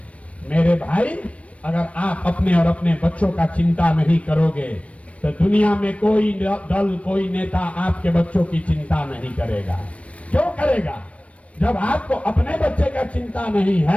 मेरे भाई अगर आप अपने और अपने बच्चों का चिंता नहीं करोगे तो दुनिया में कोई दल कोई नेता आपके बच्चों की चिंता नहीं करेगा। क्यों करेगा? जब आपको अपने बच्चे का चिंता नहीं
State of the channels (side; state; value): right; late; 0.064 ms